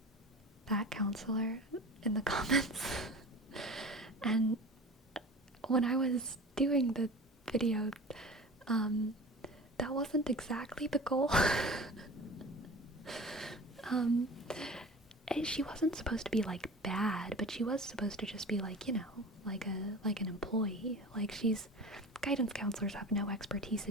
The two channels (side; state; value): both; normal; correlation 0.36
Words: that counselor in the comments. And when I was doing the video, that wasn't exactly the goal. She wasn't supposed to be like bad, but she was supposed to just be like, like an employee. Like, guidance counselors have no expertise